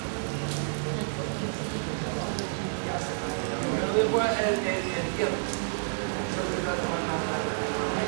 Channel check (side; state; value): left; silent; 58 dB below the other